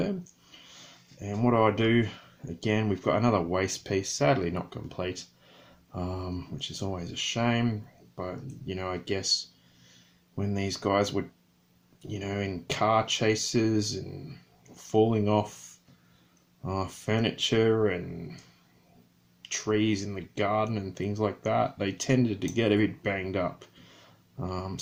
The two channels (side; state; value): both; identical; correlation 1.00